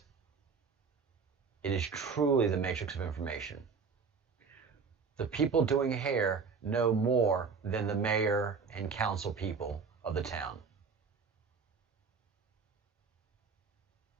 it is truly the matrix of information. The people doing hair know more than the mayor and council people of the town.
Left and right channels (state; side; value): quieter; left; 5.4 dB